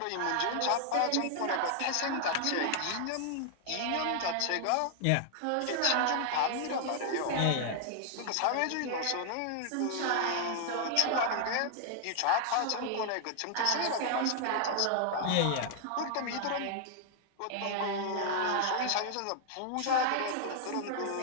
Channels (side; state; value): both; different; correlation 0.00